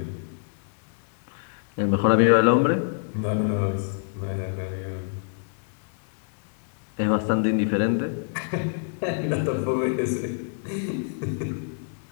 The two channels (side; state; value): right; silent; digital silence